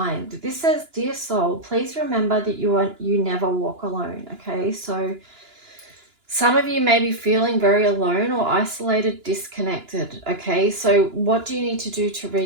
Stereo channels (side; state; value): left; late; 2.9 ms